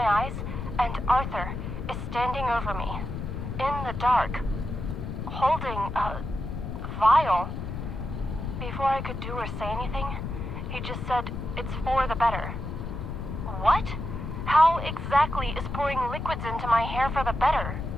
eyes and Arthur is standing over me in the dark, holding a vial. Before I could do or say anything, he just said, "It's for the better." What? How exactly is pouring liquids into my hair for the better?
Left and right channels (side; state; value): left; noise; rumble, 5 dB below the sound